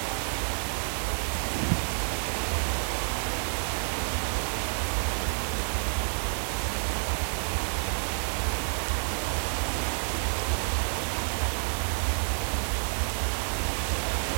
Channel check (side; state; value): left; silent; 58 dB below the other